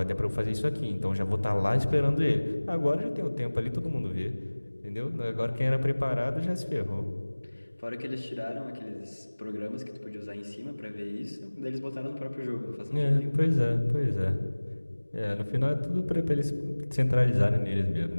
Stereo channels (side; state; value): both; inverted; correlation -1.00